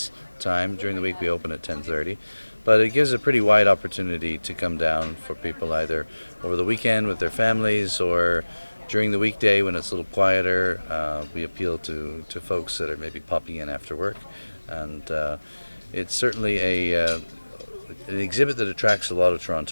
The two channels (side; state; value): both; inverted; correlation -1.00